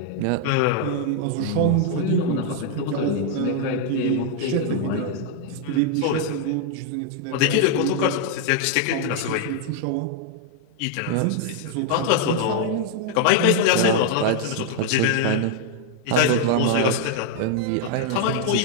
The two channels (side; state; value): both; different; correlation 0.00